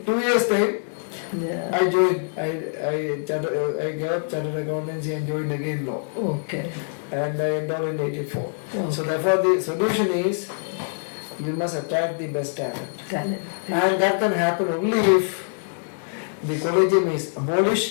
2 years' time, I joined. I gave up chartered accountancy and joined again law. Okay. And I entered in '84. Okay. So therefore, the solution is, you must attract the best talent. And that can happen only if the collegium is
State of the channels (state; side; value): silent; right; digital silence